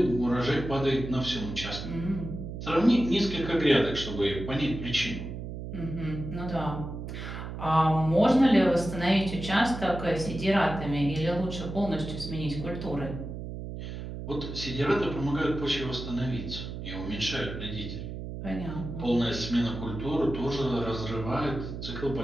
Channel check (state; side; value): noise; right; hum, 8 dB below the sound